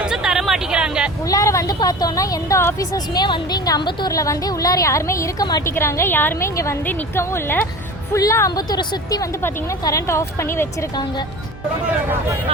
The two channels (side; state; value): both; normal; correlation 0.36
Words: தர மாட்டேங்கிறாங்க. உள்ளார வந்து பார்த்தோம்னா எந்த ஆபீசர்ஸுமே வந்து இங்க அம்பத்தூர்ல வந்து உள்ளார யாருமே இருக்க மாட்டேங்கிறாங்க. யாருமே இங்க வந்து நிக்கவும் இல்லை. ஃபுல்லா அம்பத்தூரை சுத்தி வந்து பாத்தீங்கன்னா கரண்ட் ஆஃப் பண்ணி வச்சிருக்காங்க.